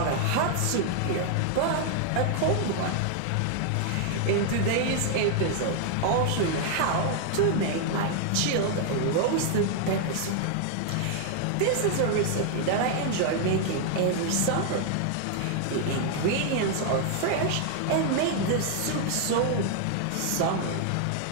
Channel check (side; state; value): both; different; correlation 0.00